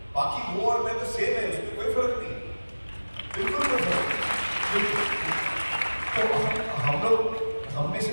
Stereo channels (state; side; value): inverted; both; correlation -1.00